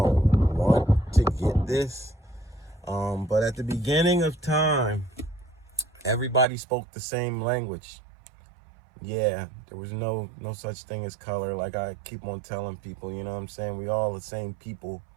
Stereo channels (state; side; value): drops out; left; at 6.5 s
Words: want to get this. But at the beginning of time, everybody spoke the same language. Yeah, there was no such thing as color. Like I keep on telling people, you know what I'm saying? We all the same people.